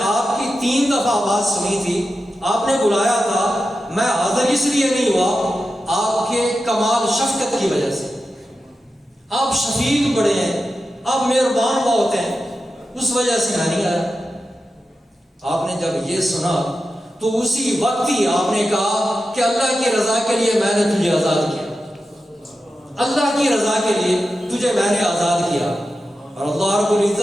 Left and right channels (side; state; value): both; normal; correlation 0.91